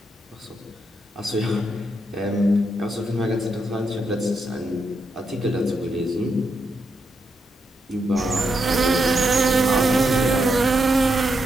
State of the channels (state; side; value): normal; both; correlation 0.82